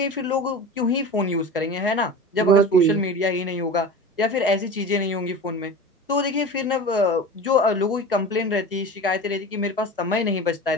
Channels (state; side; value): normal; both; correlation 0.32